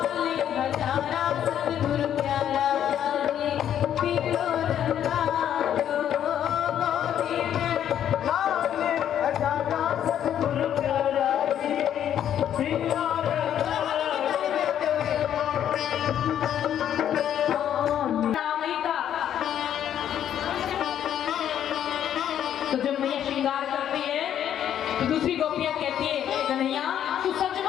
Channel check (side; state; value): right; quieter; 10.1 dB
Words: तो जब मैया श्रृंगार करती है तो दूसरी गोपियां कहती है कन्हैया तू सच